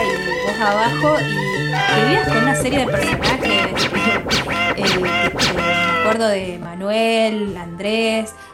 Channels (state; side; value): identical; both; correlation 1.00